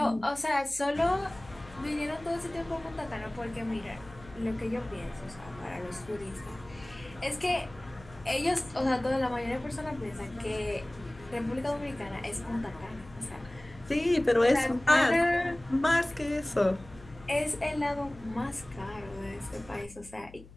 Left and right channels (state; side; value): noise; left; hum, 20 dB below the sound